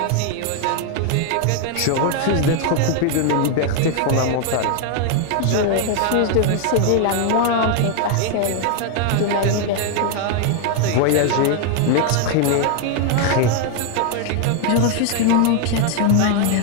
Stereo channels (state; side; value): different; both; correlation 0.00